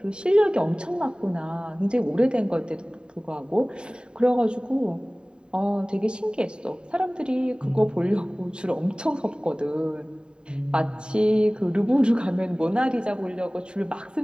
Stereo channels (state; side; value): late; left; 0.050 ms